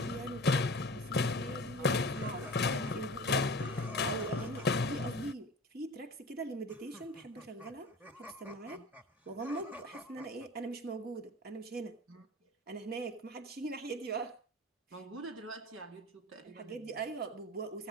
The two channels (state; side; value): normal; both; correlation 0.38